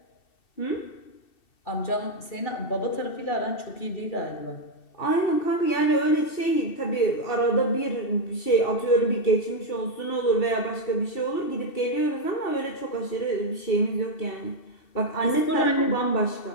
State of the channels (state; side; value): late; right; 2.7 ms